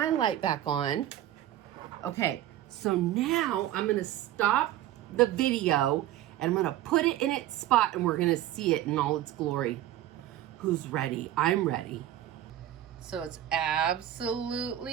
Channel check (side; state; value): left; quieter; 13.0 dB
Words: light back on. Okay, so now I'm gonna stop the video and I'm gonna put it in its spot and we're gonna see it in all its glory. Who's ready? I'm ready. So it's